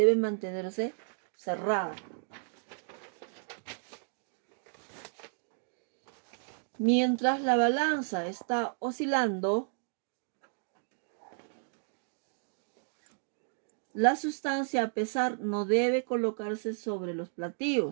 mantenerse cerrada. Mientras la balanza está oscilando, la sustancia a pesar no debe colocarse sobre los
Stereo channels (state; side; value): silent; left; digital silence